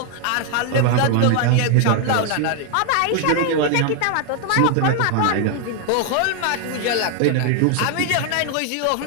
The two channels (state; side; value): different; both; correlation 0.00